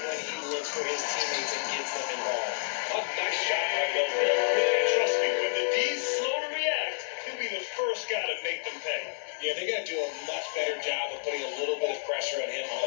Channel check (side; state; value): right; silent; digital silence